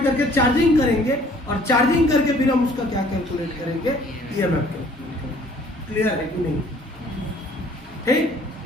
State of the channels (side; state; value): both; normal; correlation 0.56